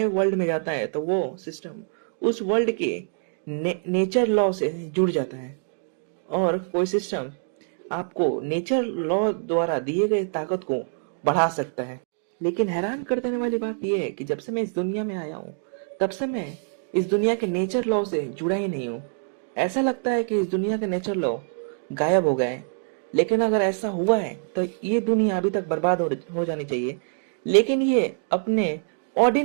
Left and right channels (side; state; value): left; silent; digital silence